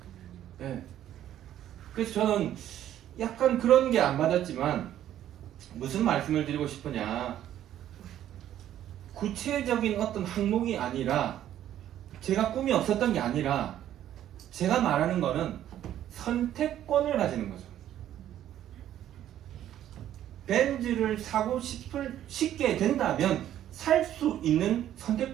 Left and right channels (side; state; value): left; quieter; 11.7 dB